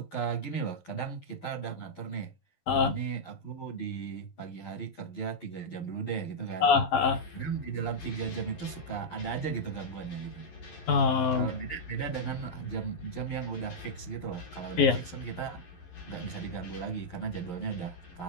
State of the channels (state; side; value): late; right; 11 ms